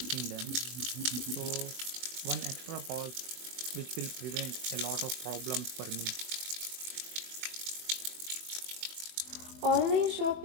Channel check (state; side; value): late; left; 24 ms